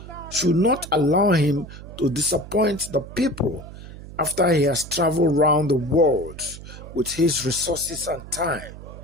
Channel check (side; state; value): right; noise; hum, 14 dB below the sound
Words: should not allow him to disappoint the people after he has traveled around the world with his resources and time.